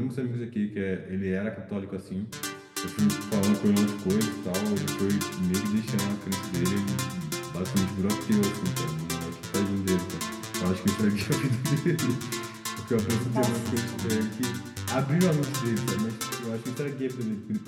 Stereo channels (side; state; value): both; identical; correlation 1.00